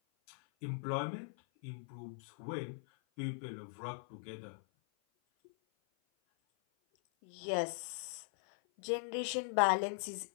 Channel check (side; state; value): right; silent; 51 dB below the other